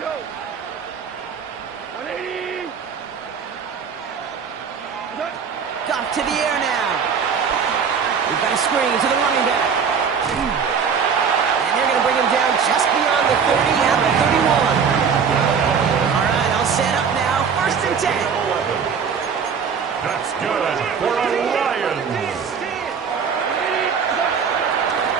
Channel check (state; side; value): quieter; left; 6.5 dB